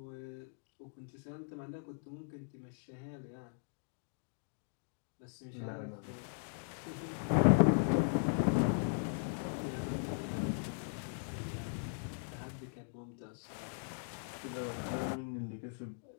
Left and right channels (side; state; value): right; silent; digital silence